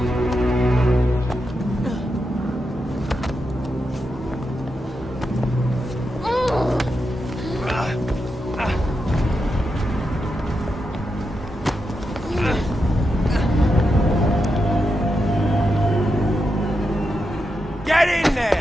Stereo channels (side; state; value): both; normal; correlation 0.86